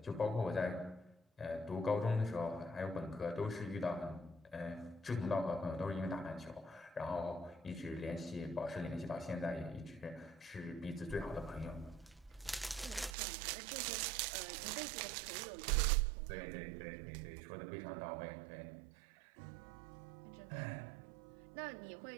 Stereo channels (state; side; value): drops out; left; at 13.2 s